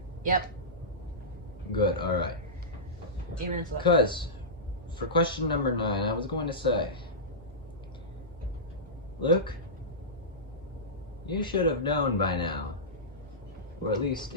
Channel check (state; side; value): normal; both; correlation -0.16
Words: Yep. Good, alright. Even it's like Because, for question number 9, I was going to say, Luke, you should have known by now, or at least